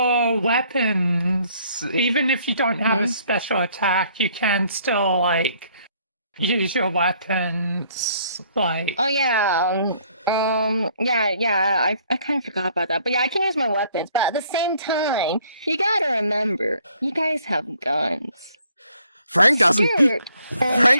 weapons, even if you don't have a special attack, you can still, like, use your weapons, like... Oh, yeah, I kind of forgot about that. But yeah, I can use my weapons, but at the same time, you gotta remember, you guys have guns. Frank doesn't.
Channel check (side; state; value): both; inverted; correlation -0.63